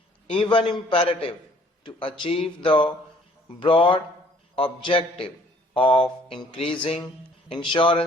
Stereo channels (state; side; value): normal; both; correlation 0.59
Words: even imperative to achieve the broad objective of increasing